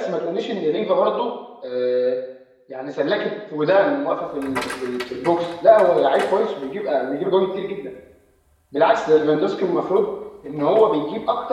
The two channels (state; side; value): identical; both; correlation 1.00